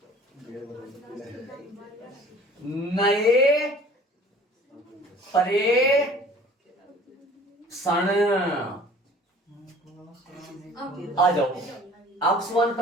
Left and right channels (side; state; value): both; normal; correlation 0.49